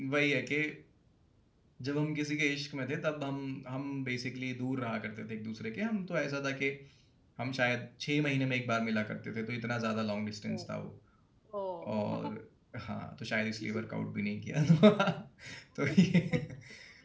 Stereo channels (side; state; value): both; identical; correlation 1.00